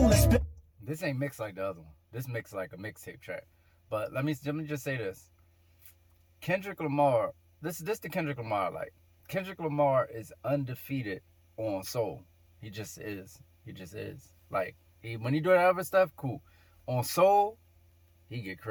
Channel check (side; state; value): both; identical; correlation 1.00